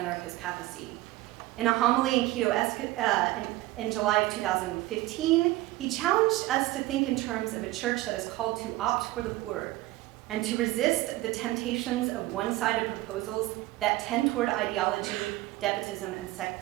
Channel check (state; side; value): quieter; left; 17.8 dB